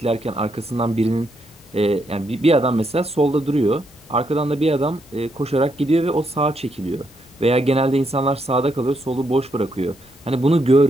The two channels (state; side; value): normal; both; correlation 0.78